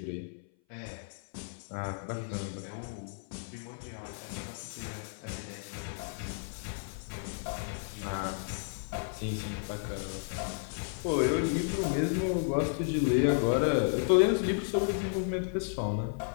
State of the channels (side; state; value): right; silent; 56 dB below the other